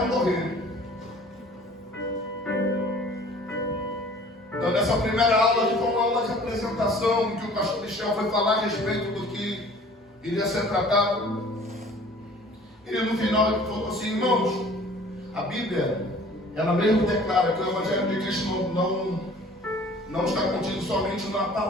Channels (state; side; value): normal; both; correlation 0.49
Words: morrer. Então, nessa primeira aula, que foi uma aula de apresentação, em que o pastor Michel foi falar a respeito do que iria ser tratado. E no final ele falou assim: irmãos, a Bíblia, ela mesmo declara que o Evangelho de Cristo não está contido somente na